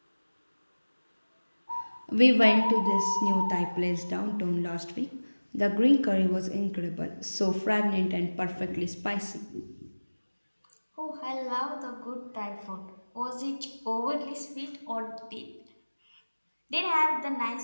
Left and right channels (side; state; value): both; inverted; correlation -1.00